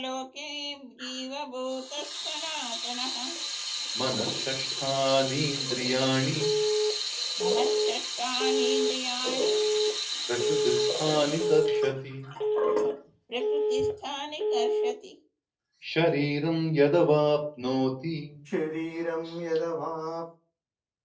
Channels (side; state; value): both; identical; correlation 1.00